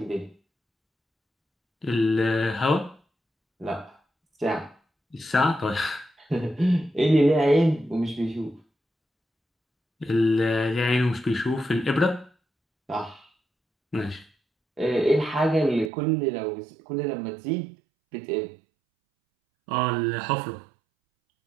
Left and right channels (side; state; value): left; drops out; at 15.9 s